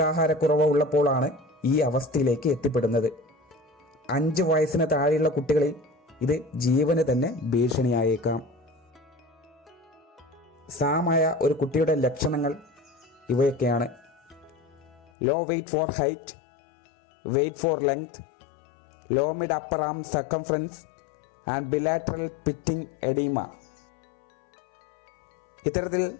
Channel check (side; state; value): right; drops out; at 15.1 s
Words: ഉള്ളപ്പോഴാണ് ഈ അവസ്ഥയിലേക്ക് എത്തിപ്പെടുന്നത്. 5 വയസ്സിന് താഴെയുള്ള കുട്ടികളിൽ ഇത് ജീവന് തന്നെ ഭീഷണിയായേക്കാം. സാമായ ഒരു കുട്ടിയുടെ ലക്ഷണങ്ങൾ ഇവയൊക്കെയാണ്: low weight for height, weight for length, low mid upper arm circumference and bilateral pitting oedema. ഇത്തരത്തിൽ